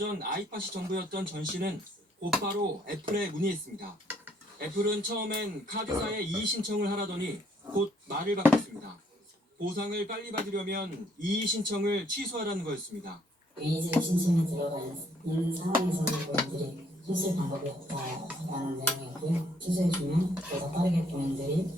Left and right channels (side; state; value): both; normal; correlation 0.67